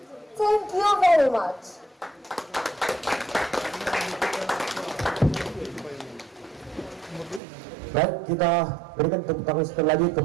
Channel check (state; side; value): drops out; left; at 7.4 s